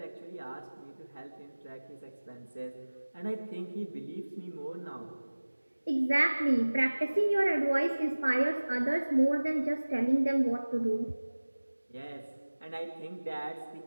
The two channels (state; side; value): inverted; both; correlation -1.00